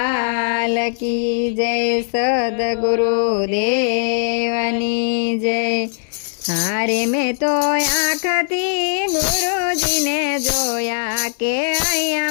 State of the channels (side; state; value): right; silent; 66 dB below the other